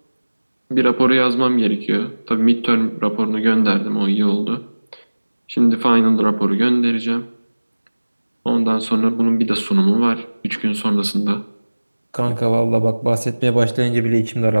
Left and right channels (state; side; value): inverted; both; correlation -1.00